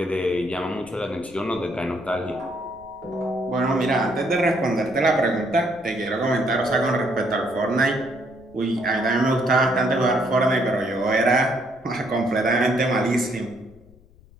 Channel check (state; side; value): noise; left; rumble, 27 dB below the sound